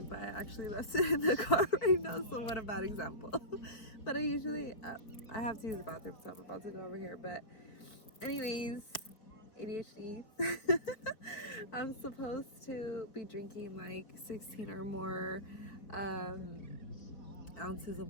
but I actually left it in the car right now, so what a bad example. But I usually, I have to use the bathroom, so I'm about to go over here. But anyways, ADHD. I'm supposed to be drinking like 16 or more ounces of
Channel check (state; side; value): late; right; 4.3 ms